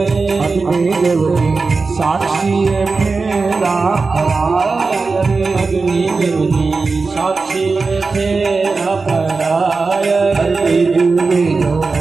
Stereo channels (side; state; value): left; quieter; 4.2 dB